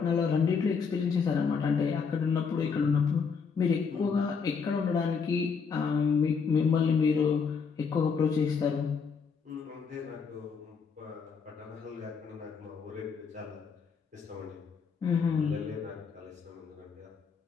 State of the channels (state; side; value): quieter; right; 5.8 dB